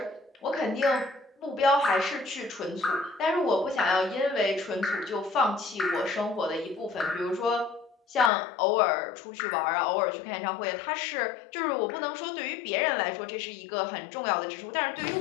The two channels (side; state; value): right; drops out; at 8.3 s